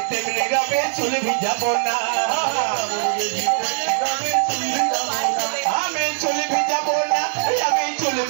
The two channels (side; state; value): left; silent; digital silence